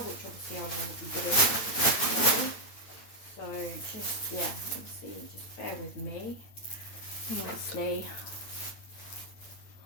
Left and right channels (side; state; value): right; late; 8.7 ms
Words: which obviously I will be doing. So just yeah, obviously just bear with me. And obviously